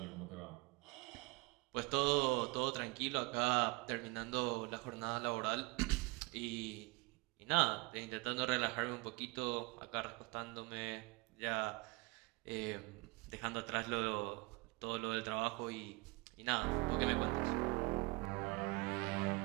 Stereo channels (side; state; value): left; quieter; 25.3 dB